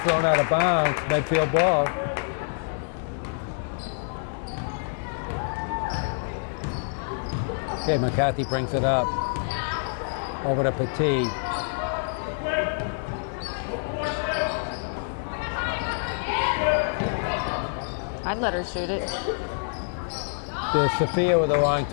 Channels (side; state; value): right; silent; 61 dB below the other